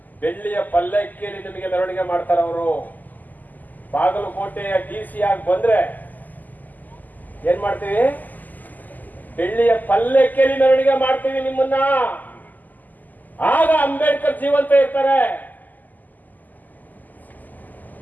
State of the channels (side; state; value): right; late; 0.083 ms